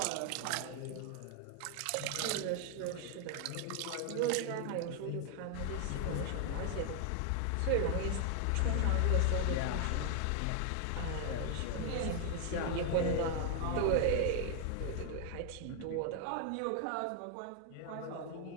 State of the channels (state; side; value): different; both; correlation 0.00